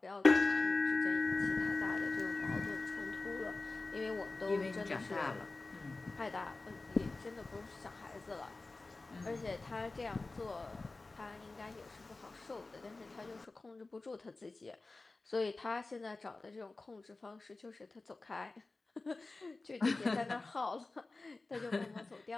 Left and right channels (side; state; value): right; quieter; 3.4 dB